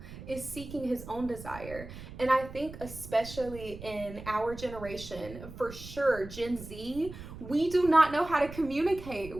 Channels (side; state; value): right; noise; rumble, 13 dB below the sound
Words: is seeking his own desire. And I think especially in our generation, for sure, Gen Z, we do not know how to communicate